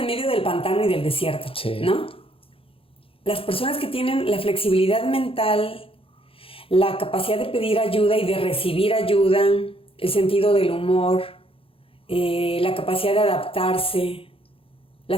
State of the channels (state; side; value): late; right; 0.27 ms